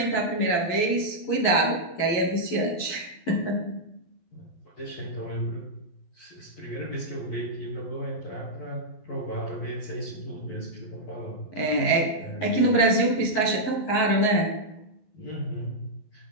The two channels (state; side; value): late; right; 12 ms